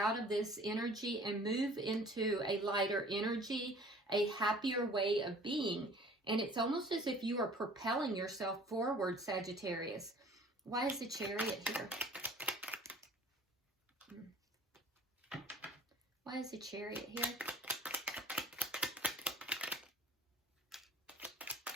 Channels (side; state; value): both; normal; correlation 0.49